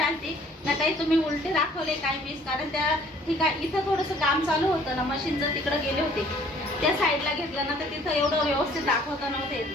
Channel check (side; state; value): both; normal; correlation 0.57